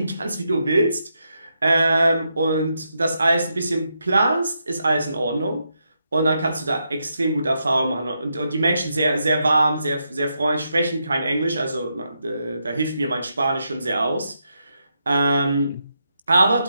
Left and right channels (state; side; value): inverted; both; correlation -0.83